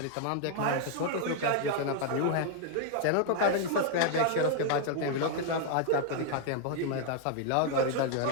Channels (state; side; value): different; both; correlation 0.00